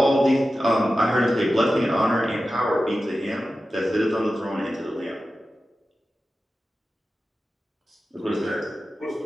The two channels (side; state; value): both; normal; correlation 0.93